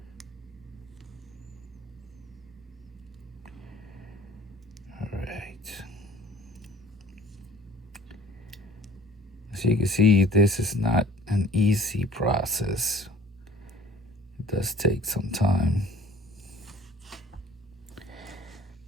All right. As you can see, this is not an easy process. It does take some time.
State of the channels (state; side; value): normal; both; correlation 0.49